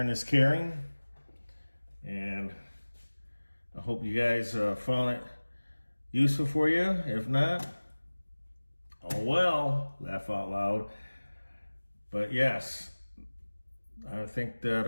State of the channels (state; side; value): inverted; both; correlation -1.00